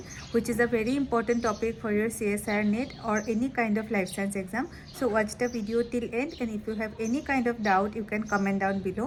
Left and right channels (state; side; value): identical; both; correlation 1.00